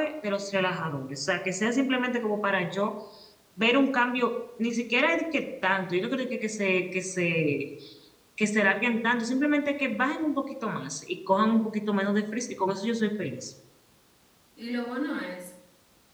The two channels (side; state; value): both; identical; correlation 1.00